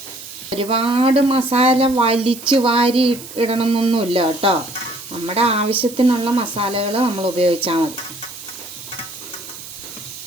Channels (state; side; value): noise; right; hiss, 15 dB below the sound